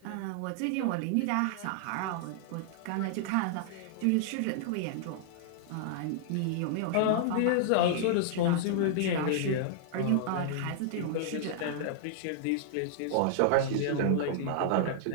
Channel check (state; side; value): different; both; correlation -0.01